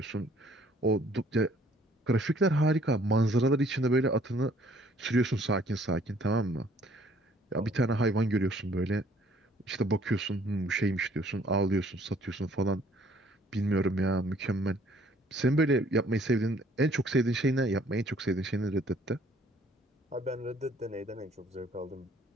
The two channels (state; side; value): normal; both; correlation 0.60